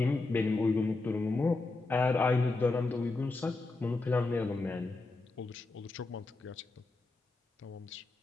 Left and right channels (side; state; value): right; quieter; 3.4 dB